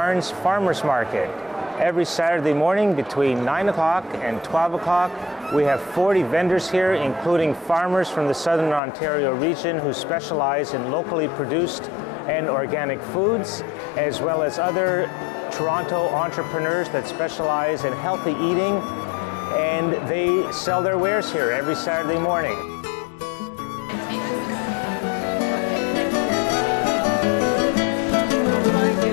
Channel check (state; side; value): drops out; right; at 8.8 s